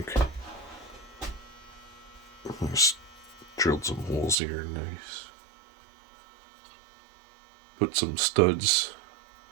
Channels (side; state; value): left; drops out; at 4.4 s